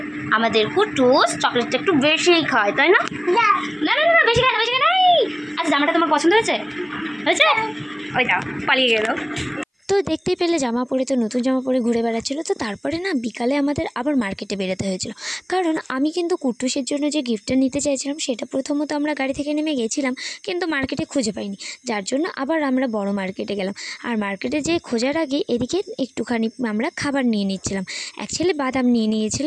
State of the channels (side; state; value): both; identical; correlation 1.00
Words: আমাদের কুটুস চকলেটটা একটু বেশিই খায়, তাই না? না না না, বেশি খায় না, বেশি খায় না। আচ্ছা, জামাটা তোমার পছন্দ হয়েছে? হয়েছে? ওইটা পালিয়ে গেল। তো দেখতেই পেলে জামা পরে, তো নতুন জামা পরে ঘুরে বেড়াচ্ছিল। তো তারপরে না বিকালে আমাদের আবার মার্কেটে বেরোতে হয়েছিল, কারণ আমি কিন্তু কুট্টুসের জন্য যে গিফটটা নিতে চাইছিলাম সেটা প্রথমত আমরা গাড়ি থেকে নেমে গেছিলাম, কিন্তু মার্কেটে খুঁজে পাইনি, যার জন্য আবার আমরা বড় মার্কেটে গেলাম। আর মার্কেটে যেয়ে খোঁজার আগে এদিকে একটুখানি আমরা খাবার নিয়ে নিচ্ছিলাম। অ্যাকচুয়ালি বাদাম নিয়ে